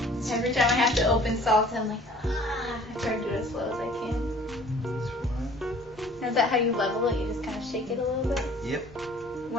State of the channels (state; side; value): normal; both; correlation 0.51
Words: Every time I have to open salt, I'm like, I try to do it as slow as I can. This one. Now, is that how you level it? You just kind of shake it a little bit? Yep.